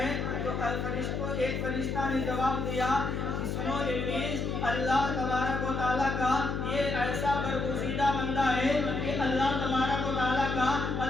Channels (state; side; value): noise; left; hum, 2 dB below the sound